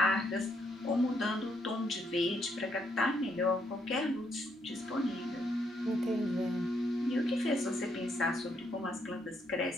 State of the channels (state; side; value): normal; both; correlation 0.74